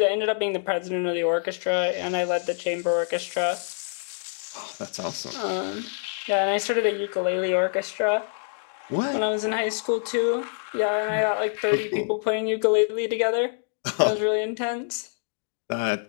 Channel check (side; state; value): right; silent; digital silence